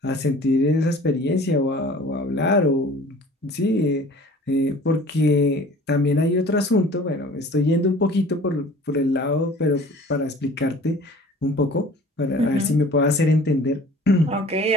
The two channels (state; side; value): normal; both; correlation 0.47